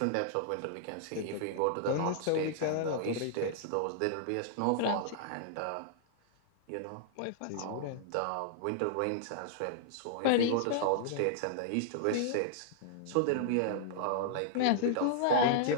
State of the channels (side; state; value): both; different; correlation -0.01